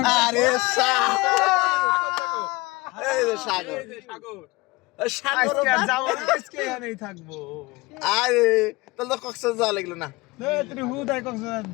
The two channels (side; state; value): right; quieter; 22.7 dB